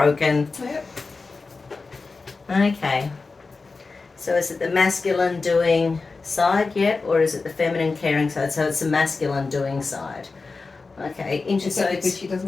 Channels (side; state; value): right; quieter; 4.1 dB